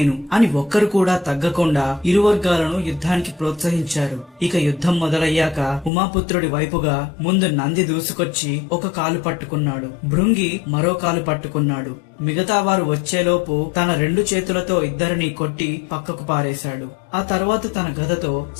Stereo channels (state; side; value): drops out; right; at 5.9 s